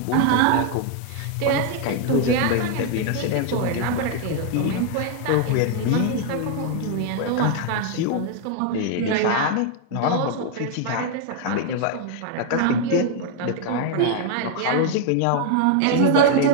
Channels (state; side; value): different; both; correlation 0.01